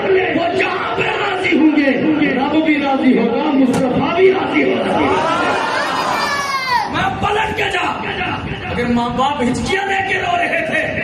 وہ جہاں پہ راضی ہوں گے رب بھی راضی ہوگا, مصطفیٰ بھی راضی ہوگا. میں پلٹ کے جا, اگر ماں باپ ہچکیاں لے کے رو رہے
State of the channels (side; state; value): both; identical; correlation 1.00